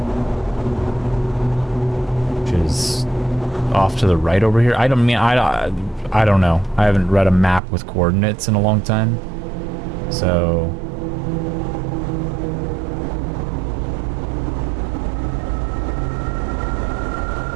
Which is off to the right over here. I don't know. I haven't read a map with coordinates in a long time. So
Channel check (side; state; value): left; drops out; at 7.6 s